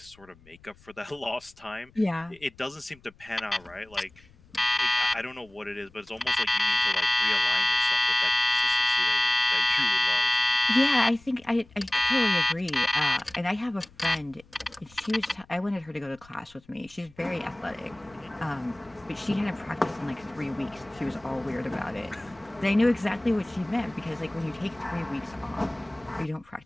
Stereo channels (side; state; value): left; noise; rumble, 27 dB below the sound